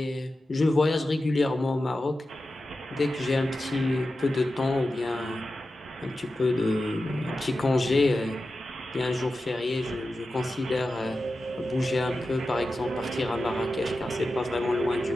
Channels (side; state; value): both; normal; correlation 0.92